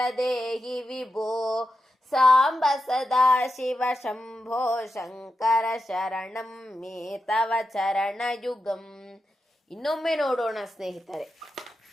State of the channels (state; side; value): normal; both; correlation 0.88